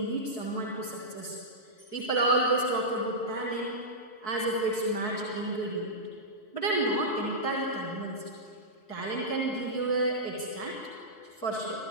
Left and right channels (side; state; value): right; late; 4.7 ms